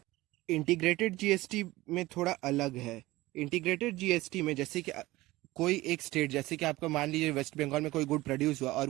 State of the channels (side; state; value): left; quieter; 18.8 dB